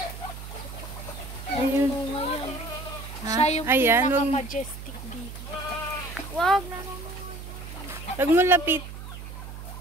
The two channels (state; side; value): noise; right; hum, 11 dB below the sound